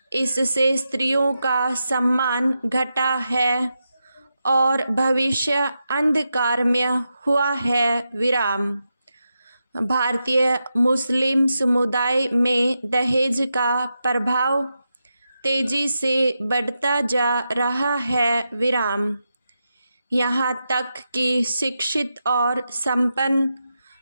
इससे स्त्रियों का सम्मान घटा है और भविष्य अंधकारमय हुआ है। विराम। भारतीय मुस्लिम समुदाय में दहेज का प्रभाव तेजी से बढ़ता जा रहा है। विराम। यहाँ तक कि शिक्षित और संपन्न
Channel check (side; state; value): both; inverted; correlation -0.87